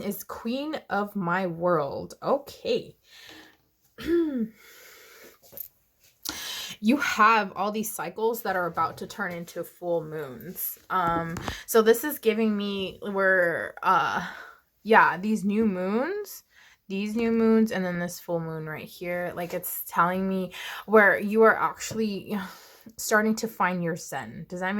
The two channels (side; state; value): both; identical; correlation 1.00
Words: Queen of My World. Okay. You have all these cycles that are about to turn into full moons. So this is giving me where yeah, these new moons, and then this full moon right here, like it's telling me where you are actually starting to find your zen. Does that